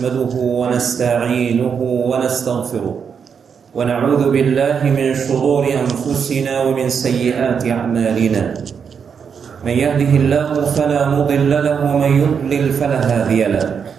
ونستعينه ونستغفره ونعوذ بالله من شرور أنفسنا ومن سيئات أعمالنا. من يهده الله فلا مضل له ومن يضلل فلا هادي له.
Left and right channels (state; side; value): quieter; left; 6.7 dB